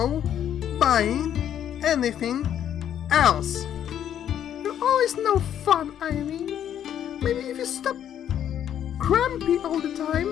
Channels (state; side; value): quieter; right; 10.0 dB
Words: buying anything else. You're always no fun, Ayumi. Maybe if you stop grumpy all the